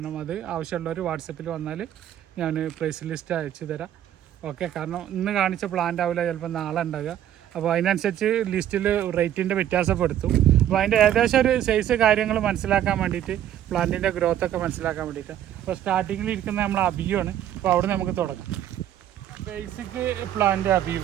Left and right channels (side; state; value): left; quieter; 11.2 dB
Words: അത് ആവശ്യമുള്ളവർ വാട്സപ്പിൽ വന്നാൽ ഞാൻ പ്രൈസ് ലിസ്റ്റ് അയച്ചു തരാം. ഓക്കെ. കാരണം ഇന്ന് കാണിച്ച പ്ലാന്റ് ആവില്ല, ചിലപ്പോൾ നാളെ ഉണ്ടാകുക. അപ്പോൾ അതിനനുസരിച്ച് ലിസ്റ്റിൽ റേറ്റിൻ്റെ വ്യത്യാസപ്പെടുത്തും. അപ്പോൾ അതിൻ്റെ ഏകദേശം ഒരു സൈസ് കാര്യങ്ങൾ മനസ്സിലാക്കാൻ വേണ്ടിയിട്ട്, പ്ലാന്റിൻ്റെ ഗ്രോത്തൊക്കെ മനസ്സിലാക്കാൻ വേണ്ടിയിട്ട്. അപ്പോൾ സ്റ്റാർട്ടിങ്ങിൽ ഇരിക്കുന്ന നമ്മൾ അബിയുമാണ്. അപ്പോൾ അവിടെ നമുക്ക് തുടങ്ങാം. ബേസിക് പ്ലാന്റ് അബിയു.